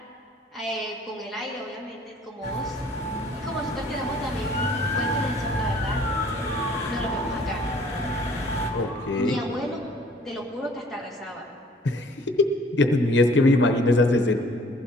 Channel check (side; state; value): both; normal; correlation 0.56